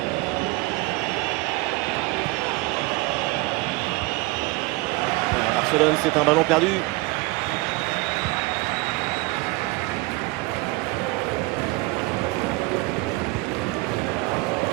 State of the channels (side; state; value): left; quieter; 22.8 dB